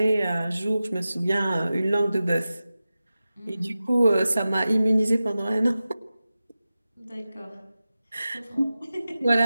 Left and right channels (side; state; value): both; inverted; correlation -0.94